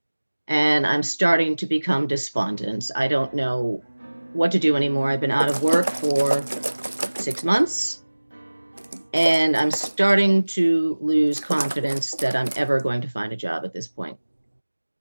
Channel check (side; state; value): both; inverted; correlation -1.00